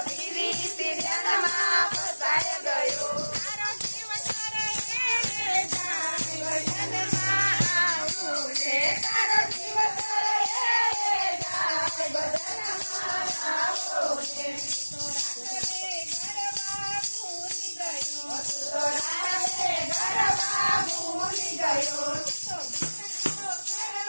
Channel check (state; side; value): inverted; both; correlation -1.00